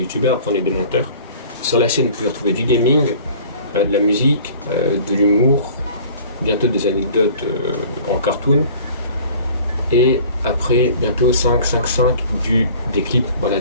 après on est des menteurs. Sur la chaîne, vous pouvez retrouver du gaming, de la musique, de l'humour, bientôt des anecdotes en cartoon. Et après, bientôt 5 des clips,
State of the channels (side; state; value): both; inverted; correlation -0.47